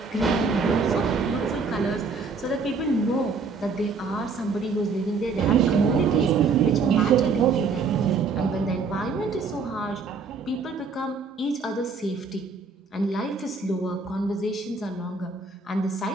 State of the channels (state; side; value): quieter; left; 4.6 dB